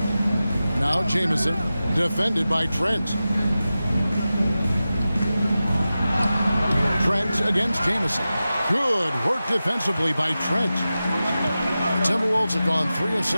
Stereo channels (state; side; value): inverted; both; correlation -0.94